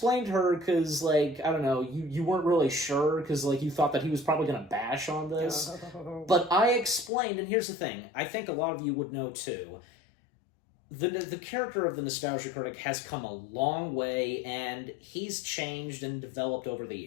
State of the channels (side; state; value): right; drops out; at 7.1 s